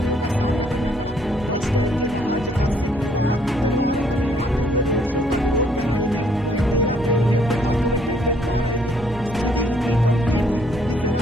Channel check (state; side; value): normal; both; correlation 0.67